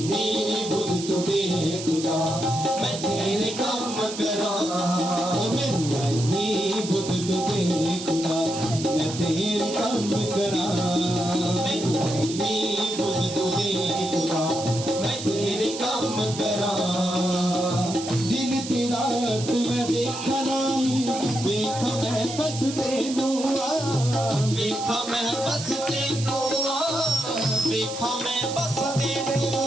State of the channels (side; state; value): right; noise; hiss, 9 dB below the sound